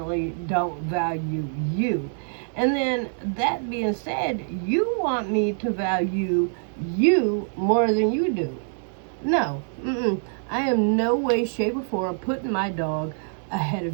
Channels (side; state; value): left; silent; digital silence